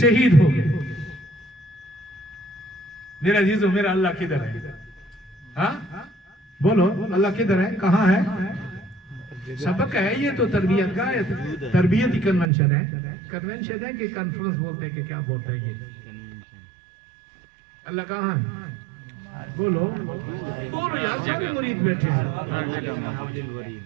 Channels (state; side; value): drops out; left; at 12.5 s